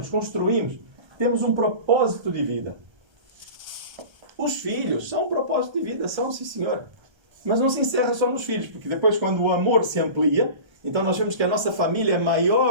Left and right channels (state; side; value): late; left; 1.3 ms